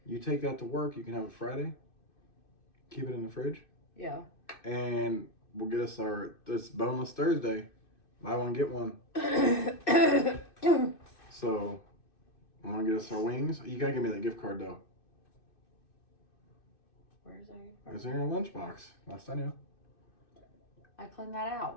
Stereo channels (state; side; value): late; right; 2.6 ms